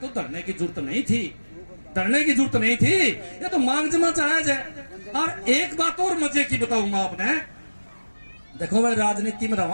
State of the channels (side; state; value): both; inverted; correlation -1.00